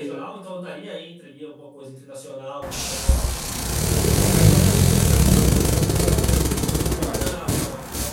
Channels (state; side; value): identical; both; correlation 1.00